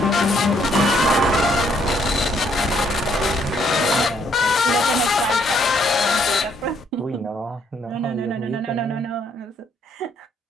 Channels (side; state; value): both; normal; correlation 0.69